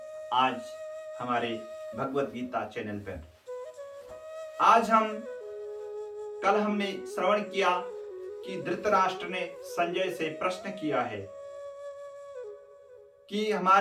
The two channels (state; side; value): identical; both; correlation 1.00